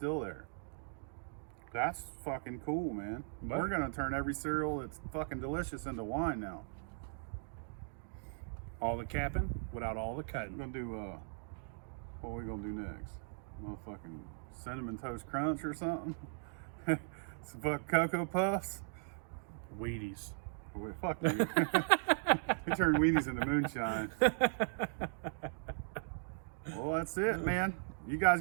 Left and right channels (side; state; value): left; silent; digital silence